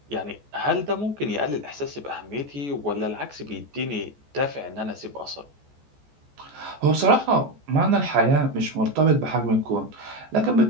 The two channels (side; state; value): left; late; 14 ms